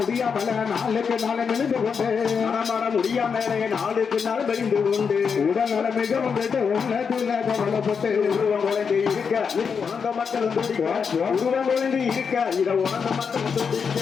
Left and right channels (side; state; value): right; quieter; 6.1 dB